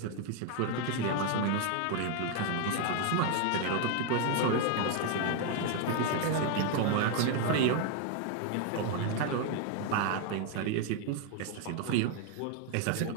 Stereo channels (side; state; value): both; different; correlation 0.01